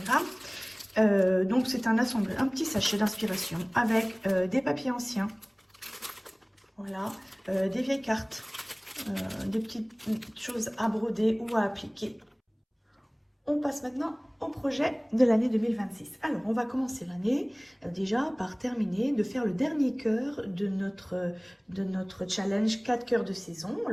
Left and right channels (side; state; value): both; identical; correlation 1.00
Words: Donc c'est un petit sachet d'inspiration avec des papiers anciens. Voilà, des vieilles cartes. Des petites choses à broder ou à appliquer. On passe maintenant au projet de l'année 2026. Alors, on va commencer l'année déjà par terminer de faire le dernier cœur de notre challenge 4 cœurs de saison.